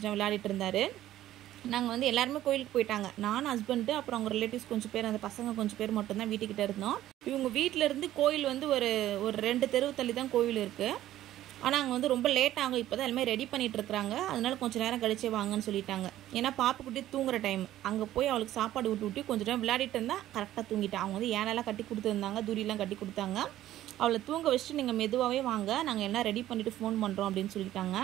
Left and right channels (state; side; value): quieter; left; 13.5 dB